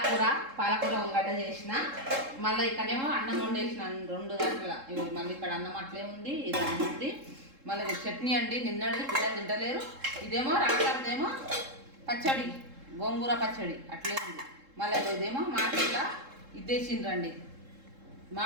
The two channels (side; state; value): left; late; 3.7 ms